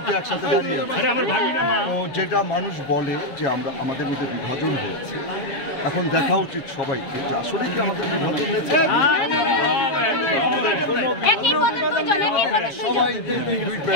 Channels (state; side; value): late; right; 7.4 ms